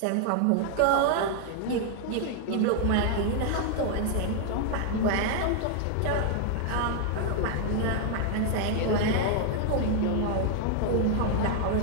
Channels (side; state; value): both; different; correlation 0.00